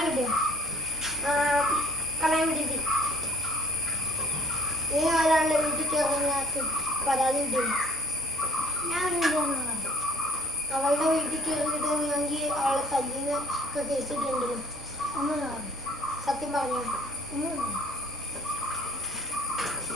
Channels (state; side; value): normal; both; correlation 0.51